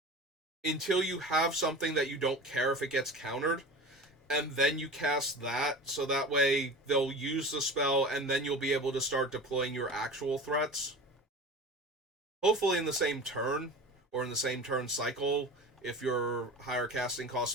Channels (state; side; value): normal; both; correlation 0.34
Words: until you have something that you don't care if it gets countered, and then you cast that, so that way they'll use the spell, and then you'll be able to start deploying your actual threats. Hopefully in the same turn, or in the same turn cycle, if your higher casting cost